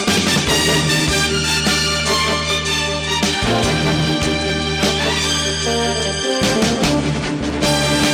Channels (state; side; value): identical; both; correlation 1.00